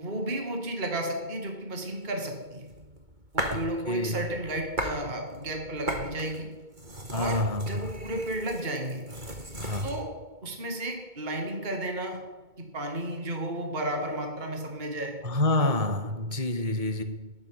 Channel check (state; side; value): late; left; 2.2 ms